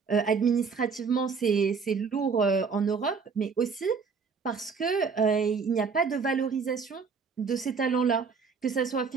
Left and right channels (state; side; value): quieter; left; 5.4 dB